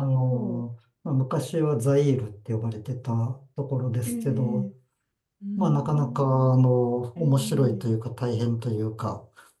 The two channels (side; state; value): both; identical; correlation 1.00